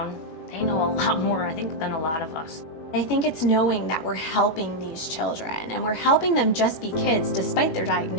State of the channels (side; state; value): right; late; 21 ms